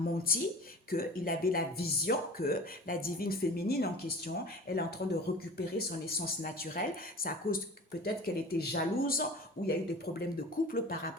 qu'il avait la vision que la divine féminine en question, elle est en train de récupérer son essence naturelle. C'est à cause peut-être qu'elle était jalouse ou il y a eu des problèmes de couple par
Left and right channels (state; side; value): normal; both; correlation 0.39